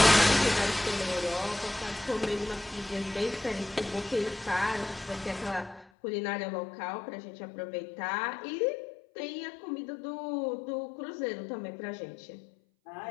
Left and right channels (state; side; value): drops out; right; at 5.9 s